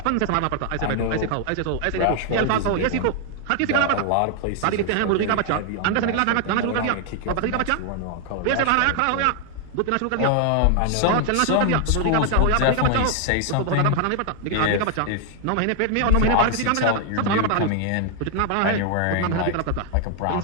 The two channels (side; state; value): both; different; correlation 0.00